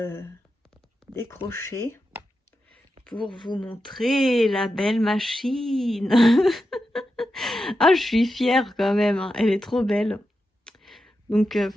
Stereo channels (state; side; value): normal; both; correlation 0.89